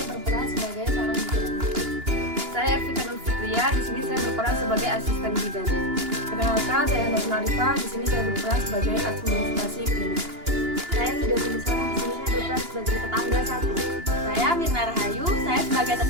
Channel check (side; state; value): left; late; 2.9 ms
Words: berperan sebagai seorang bidan. Saya Ervika Nur Fitria, di sini saya berperan sebagai asisten bidan. Perkenalkan, saya Hendak Arifah, di sini saya berperan sebagai administrasi klinik. Saya Hidatul Isra, di sini saya berperan sebagai tetangga satu. Saya Mirna Rahayu, saya sebagai